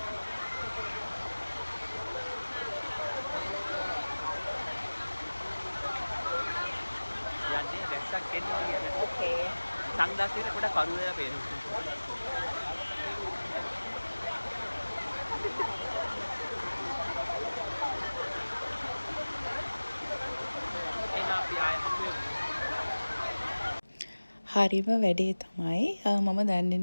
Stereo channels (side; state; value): both; inverted; correlation -1.00